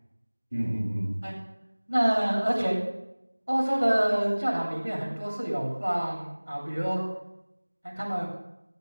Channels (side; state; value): both; inverted; correlation -1.00